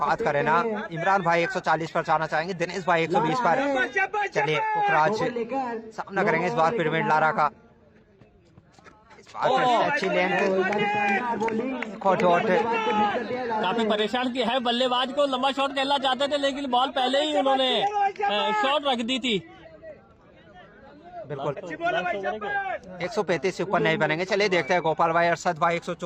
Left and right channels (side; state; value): both; identical; correlation 1.00